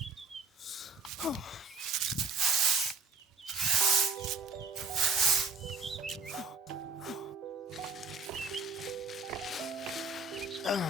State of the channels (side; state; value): left; quieter; 4.5 dB